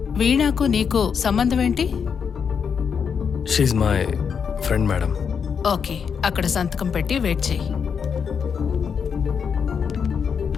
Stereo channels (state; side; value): quieter; right; 6.7 dB